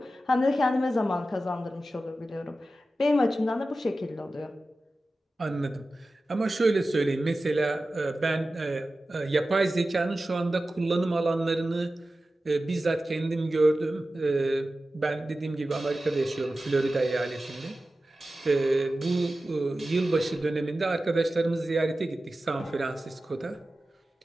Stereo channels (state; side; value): normal; both; correlation 0.94